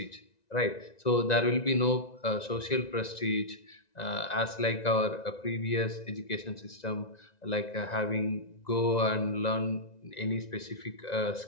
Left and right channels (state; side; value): late; right; 1.9 ms